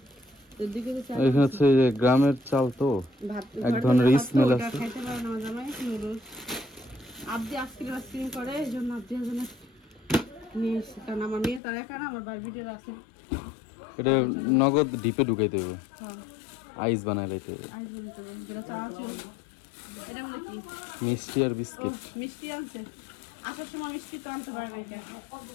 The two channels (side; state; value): right; drops out; at 11.6 s